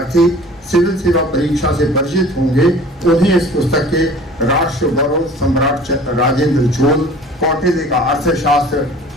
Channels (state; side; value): normal; both; correlation 0.46